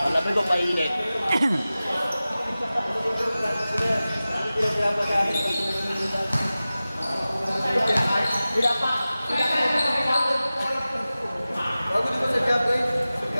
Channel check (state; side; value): inverted; both; correlation -0.96